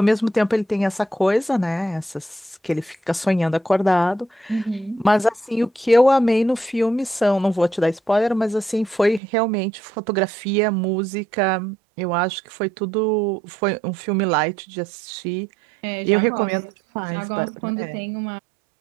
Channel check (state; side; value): drops out; left; at 9.2 s